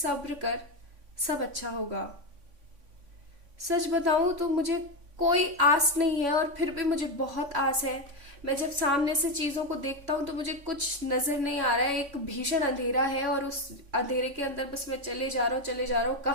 कर, सब अच्छा होगा. सच बताऊं तो मुझे कोई आस नहीं है, और फिर भी मुझे बहुत आस है. मैं जब सामने से चीज़ों को देखता हूँ तो मुझे कुछ नज़र नहीं आ रहा है. एक भीषण अंधेरा है, और उस अंधेरे के अंदर बस मैं चले जा रहा हूँ, चले जा रहा हूँ.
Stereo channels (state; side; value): late; left; 3.5 ms